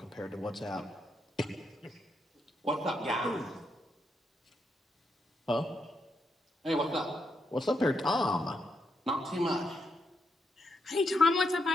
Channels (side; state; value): both; normal; correlation 0.80